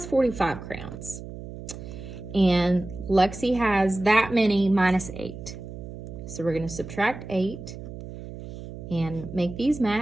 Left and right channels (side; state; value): right; noise; hum, 11 dB below the sound